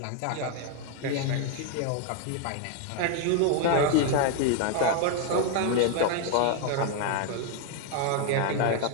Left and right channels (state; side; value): different; both; correlation 0.00